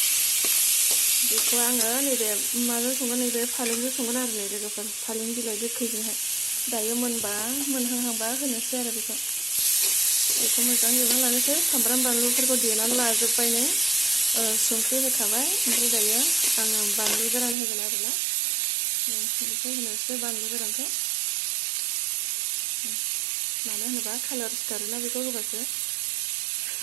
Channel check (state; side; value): drops out; left; at 17.6 s